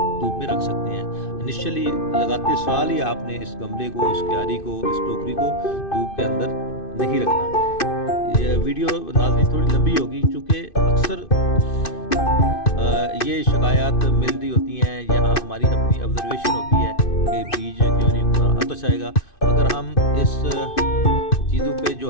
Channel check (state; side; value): late; right; 2.6 ms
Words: धूप में रख सकते हैं। इनिशियली लगाते साल ही आपने इस गमले को, इस क्यारी को, इस टोकरी को धूप के अंदर नहीं रखना। ये वीडियो नाज़रीन थोड़ी लंबी होगी, चूँकि अक्सर ये शिकायत मिल रही होती हैं या हमारी अपनी ऑब्जर्वेशन होती है कि बीज क्यों नहीं उगता। तो चाहेगा अगर हम इस चीज़ों पे जो